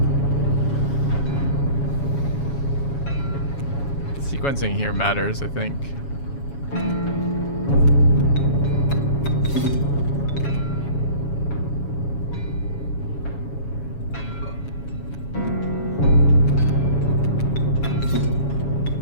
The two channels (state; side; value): late; right; 7.2 ms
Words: Sequencing here matters, I think.